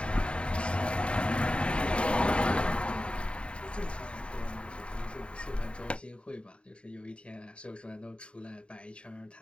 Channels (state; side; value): late; right; 0.056 ms